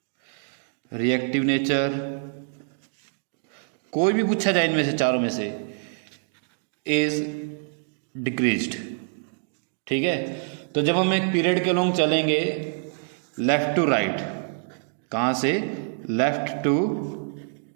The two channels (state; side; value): silent; left; digital silence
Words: reactive nature, कोई भी पूछा जाए इनमें से चारों में से, इज डिक्रीज्ड। ठीक है, तो जब हम एक पीरियड के अलोंग चलेंगे लेफ्ट टू राइट, कहाँ से लेफ्ट टू